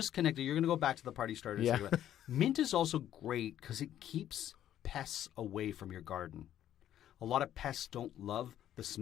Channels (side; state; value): right; quieter; 11.4 dB